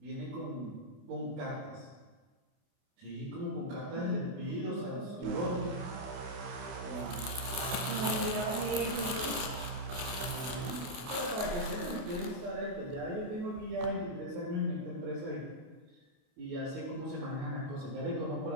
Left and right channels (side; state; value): left; late; 28 ms